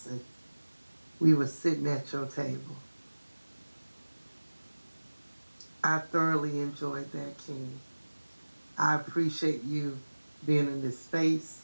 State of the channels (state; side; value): inverted; both; correlation -1.00